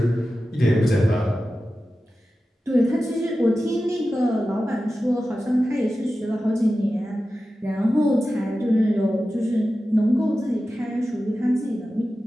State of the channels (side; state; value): both; normal; correlation 0.94